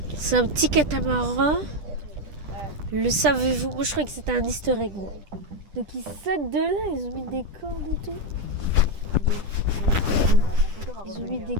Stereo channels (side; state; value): left; late; 10 ms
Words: C'est un petit catamaran. Le savez-vous? Moi je croyais que c'était un easter egg. Moi. Donc ils sautent de là, ils ont mis des cordes et tout. Ils ont mis des